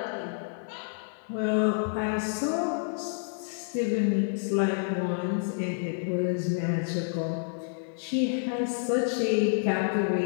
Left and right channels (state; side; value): silent; right; 59 dB below the other